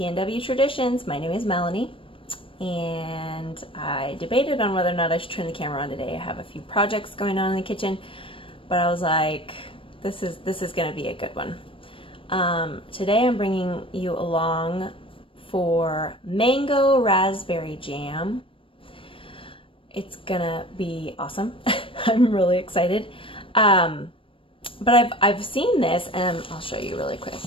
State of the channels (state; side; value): late; right; 0.25 ms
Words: Traditions. My name is Melanie, and I debated on whether or not I should turn the camera on today. I have a few projects going on in the kitchen, but I was like, this is gonna be a good one. Today I'm bringing you along for mango raspberry jam. It's gonna be awesome. I'm really excited. But I've seen this, and I'll show you really quick.